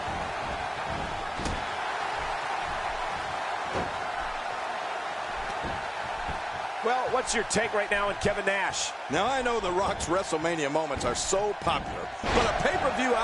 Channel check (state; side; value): identical; both; correlation 1.00